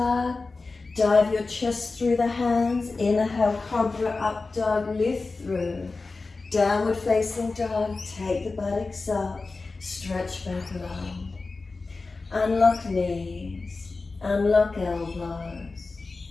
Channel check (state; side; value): quieter; right; 3.8 dB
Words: Dive your chest through the hands. Inhale, cobra, up dog, lift through. Downward facing dog, take the buttocks up. Stretch back long. Unlock knees, unlock elbows.